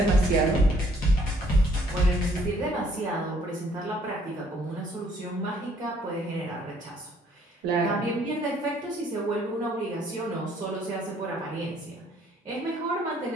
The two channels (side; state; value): both; normal; correlation 0.63